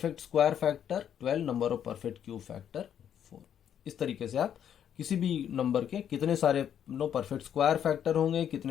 square factor 12, number of perfect cube factor 4। इस तरीके से आप किसी भी नंबर के कितने सारे परफेक्ट स्क्वायर फैक्टर होंगे,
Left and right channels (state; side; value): quieter; right; 9.3 dB